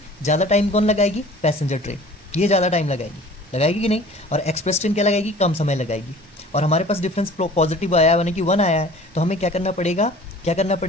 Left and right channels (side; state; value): both; normal; correlation 0.46